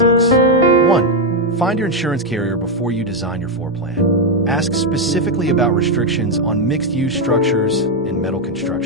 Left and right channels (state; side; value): normal; both; correlation 0.04